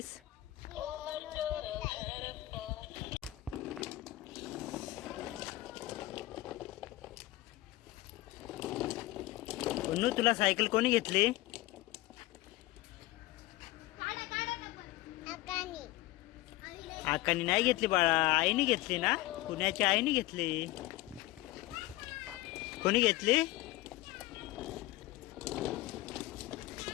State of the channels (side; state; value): right; quieter; 17.8 dB